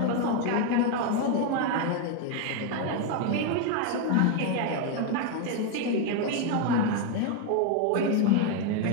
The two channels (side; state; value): both; different; correlation 0.01